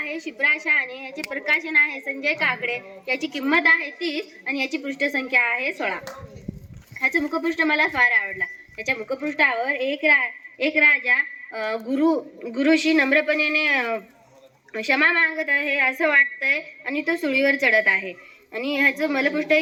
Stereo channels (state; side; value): identical; both; correlation 1.00